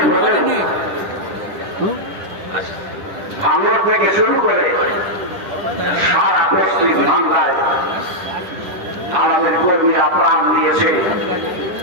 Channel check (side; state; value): left; late; 10 ms